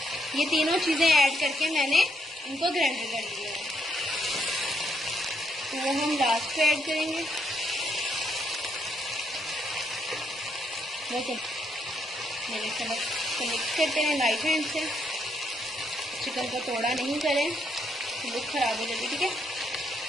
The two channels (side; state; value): both; normal; correlation 0.76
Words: ये तीनों चीज़ें ऐड करके मैंने इनको ग्राइंड कर लिया है, तो वो हम लास्ट पे ऐड करेंगे। ओके, मैंने चलो तो मिक्स करते हैं लाइट हैंड से। चिकन को तोड़ा नहीं करें, लुक खराब हो जाती, ठीक है।